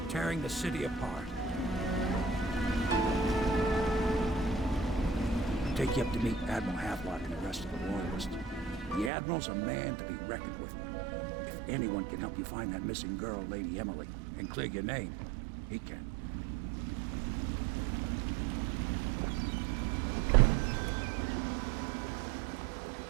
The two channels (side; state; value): left; drops out; at 9.1 s